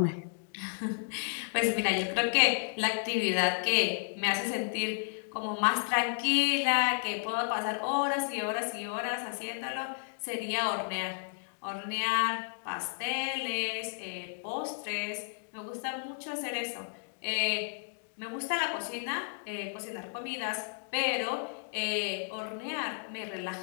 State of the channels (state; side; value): silent; right; digital silence